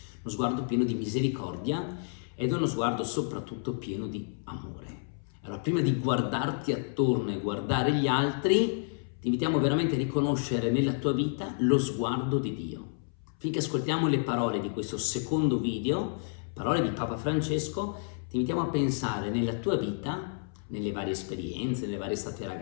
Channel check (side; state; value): right; silent; 58 dB below the other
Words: uno sguardo pieno di misericordia ed è uno sguardo soprattutto pieno di amore. Allora, prima di guardarti attorno e guardare gli altri, ti invitiamo veramente a riconoscere nella tua vita lo sguardo di Dio. Finché ascoltiamo le parole di questo secondo video, parole di Papa Francesco, ti invitiamo a pensare nella tua vita, nelle varie esperienze, nelle varie estate